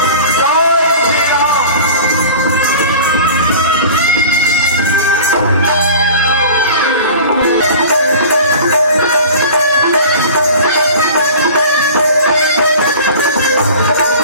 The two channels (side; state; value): both; inverted; correlation -0.39